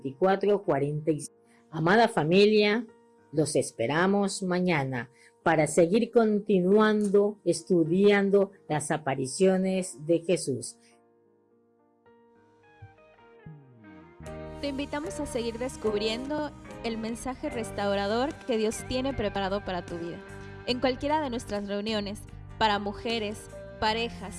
46. Amada familia, los esperamos mañana para seguir continuando estudiando las apariciones de Jesús. Te invitamos a seguir descubriendo el mensaje restaurador que Dios tiene preparado para tu vida. En cualquiera de nuestras reuniones, para mujeres,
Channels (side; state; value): both; identical; correlation 1.00